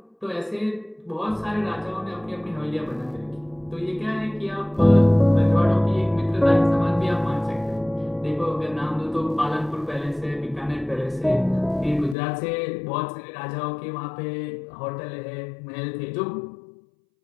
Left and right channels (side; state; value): right; drops out; at 12.2 s